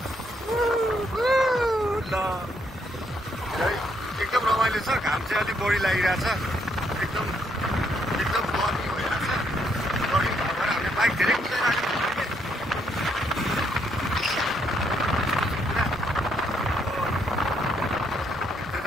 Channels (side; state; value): both; normal; correlation 0.73